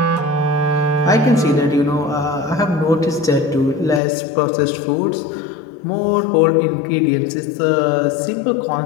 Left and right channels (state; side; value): drops out; right; at 4.0 s